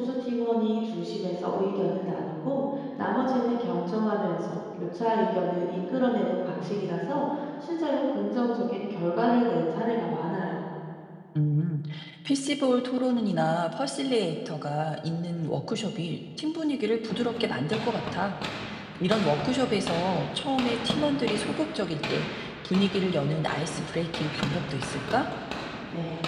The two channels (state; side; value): identical; both; correlation 1.00